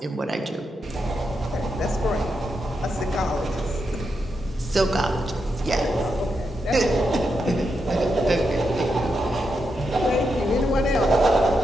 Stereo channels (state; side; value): normal; both; correlation 0.84